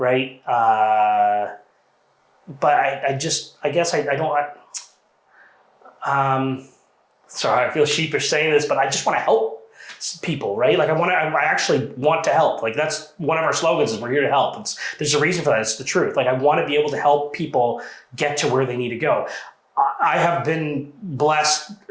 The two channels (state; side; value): identical; both; correlation 1.00